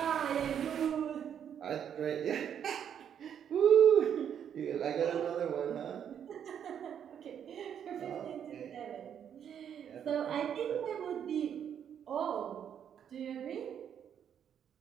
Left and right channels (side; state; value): left; quieter; 8.8 dB